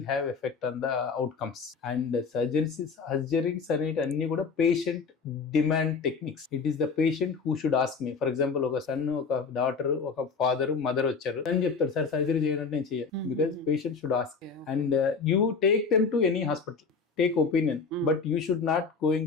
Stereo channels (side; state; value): right; quieter; 5.0 dB